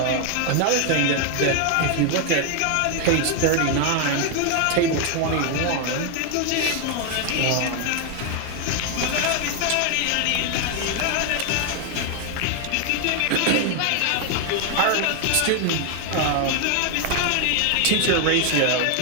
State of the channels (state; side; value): different; both; correlation 0.01